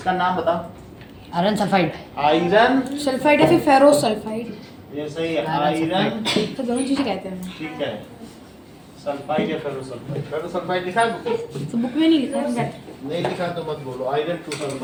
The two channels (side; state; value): both; identical; correlation 1.00